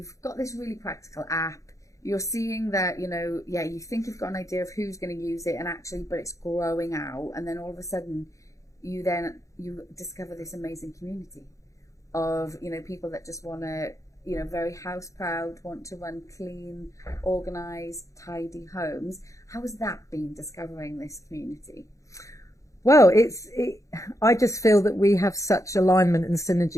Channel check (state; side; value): late; right; 0.15 ms